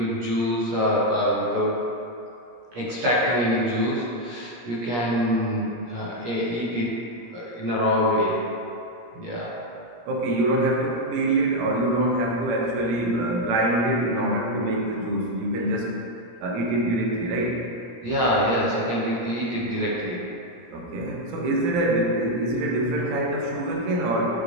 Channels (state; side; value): late; left; 17 ms